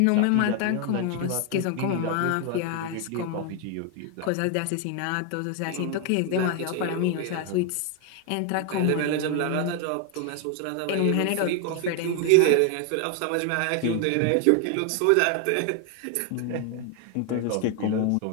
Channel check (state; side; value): different; both; correlation 0.01